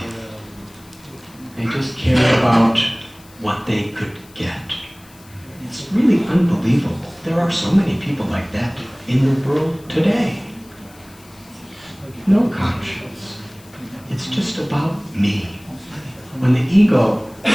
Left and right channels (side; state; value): left; noise; hiss, 25 dB below the sound